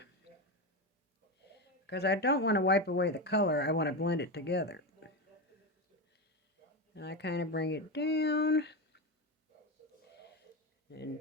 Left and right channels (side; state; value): both; normal; correlation 0.15